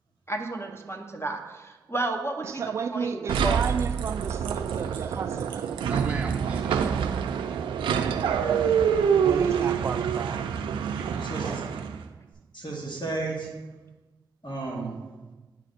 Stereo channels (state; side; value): quieter; left; 6.3 dB